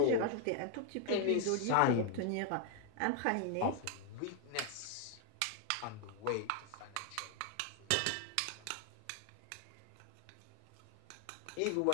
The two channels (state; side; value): different; both; correlation 0.00